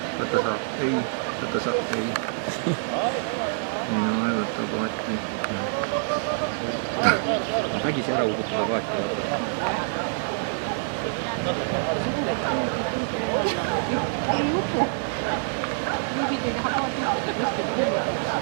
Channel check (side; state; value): left; silent; 61 dB below the other